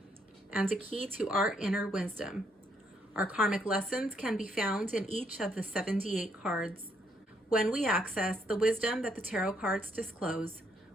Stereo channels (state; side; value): normal; both; correlation 0.72